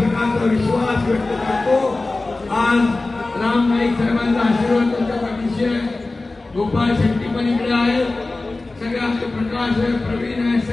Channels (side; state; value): right; quieter; 3.2 dB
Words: विश्वास व्यक्त करतो। आज राम नाईक साहेबांचा आशीर्वाद त्यांच्या पाठीशी आहे, गोपाळ शेट्टी पण इकडे आहेत, सगळे आमचे प्रकाश आहे, प्रवीण आहे,